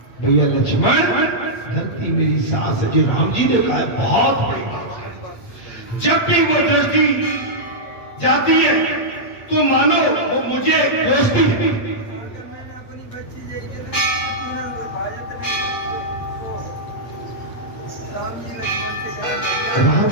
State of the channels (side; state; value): right; late; 8.4 ms